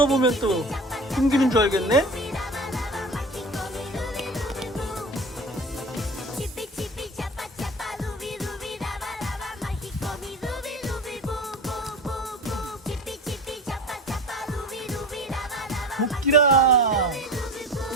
보면 또 숨기는 줄 알겠네? 코끼라.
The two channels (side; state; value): both; normal; correlation 0.34